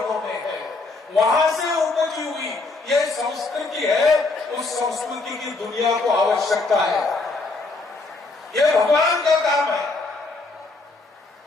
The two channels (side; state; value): right; quieter; 3.5 dB